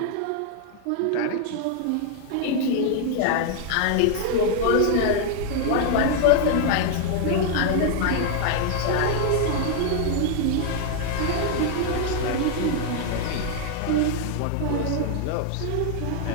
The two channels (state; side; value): different; both; correlation 0.00